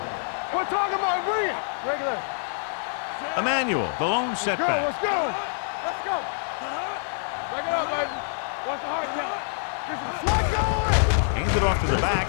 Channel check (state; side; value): silent; right; digital silence